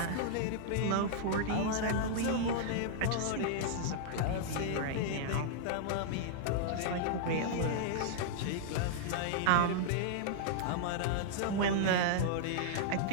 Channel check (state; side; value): different; both; correlation -0.01